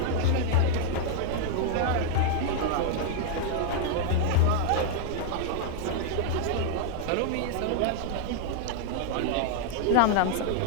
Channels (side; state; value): both; different; correlation 0.00